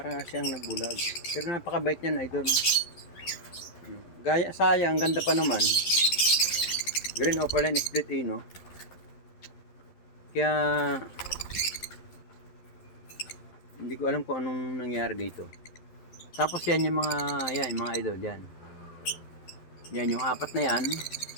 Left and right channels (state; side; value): late; right; 12 ms